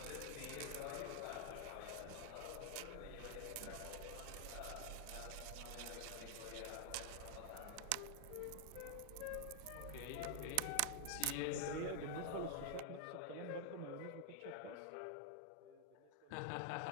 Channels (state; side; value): different; both; correlation 0.00